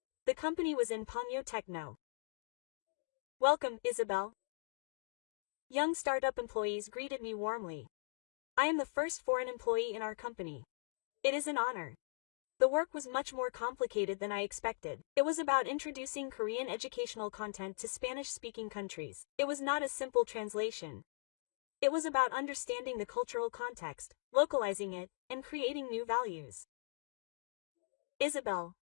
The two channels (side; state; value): right; silent; digital silence